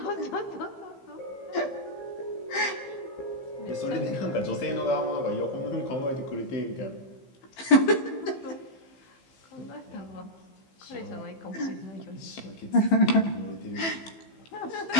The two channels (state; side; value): late; right; 15 ms